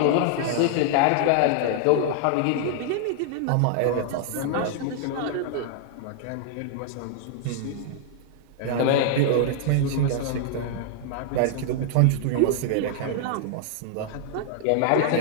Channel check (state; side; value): different; both; correlation -0.01